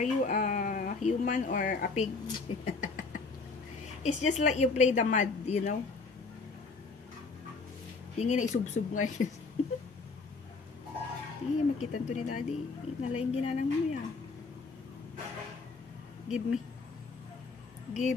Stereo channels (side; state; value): right; quieter; 4.1 dB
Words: you a human or a pig? It's just like you play the mud, you know? Yung isubsub ngayon. Hindi, makita to ni daddy. Nalaing ginanang mo yan. Give me.